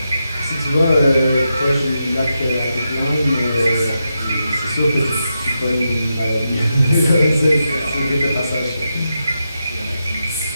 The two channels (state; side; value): inverted; both; correlation -0.86